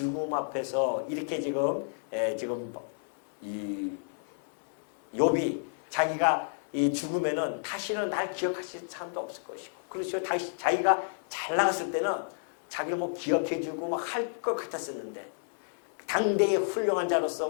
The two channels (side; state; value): right; silent; digital silence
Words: 앞에서 이렇게 지금 이 욥이 자기가 이 죽으면은 다시는 날 기억하실 사람도 없을 것이고, 그렇죠. 다시 자기가 잘 나갔을 때는 자기를 뭐 기억해주고 막 할 것 같았었는데, 당대의 훌륭한 자로서